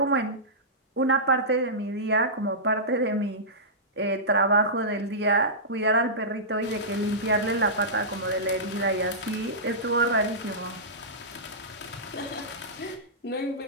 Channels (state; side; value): normal; both; correlation -0.17